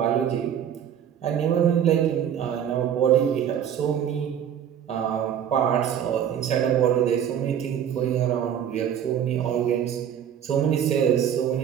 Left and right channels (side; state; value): left; quieter; 9.2 dB